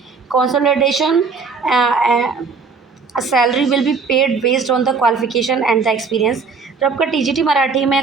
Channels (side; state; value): left; quieter; 4.9 dB